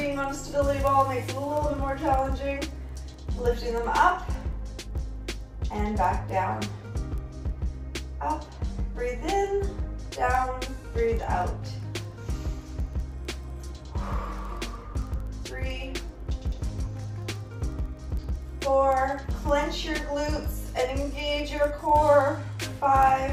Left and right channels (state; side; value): identical; both; correlation 1.00